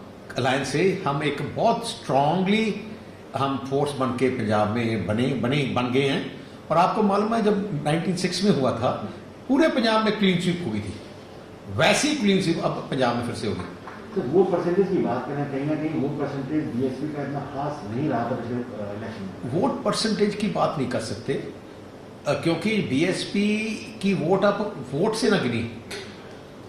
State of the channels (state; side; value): identical; both; correlation 1.00